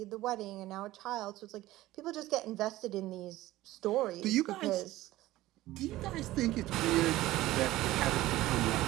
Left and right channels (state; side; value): quieter; left; 16.6 dB